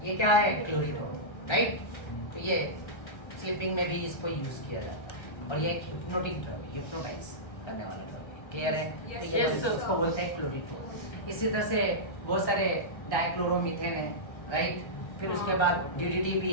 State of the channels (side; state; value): right; late; 1.3 ms